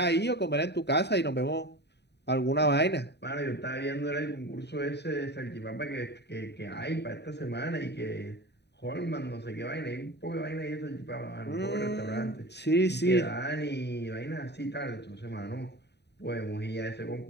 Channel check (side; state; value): right; late; 0.49 ms